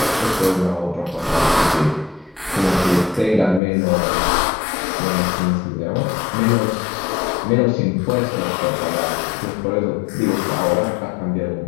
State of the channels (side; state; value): right; drops out; at 3.6 s